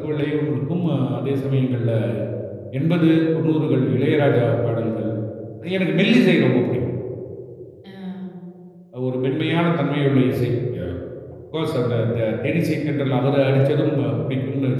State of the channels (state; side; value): identical; both; correlation 1.00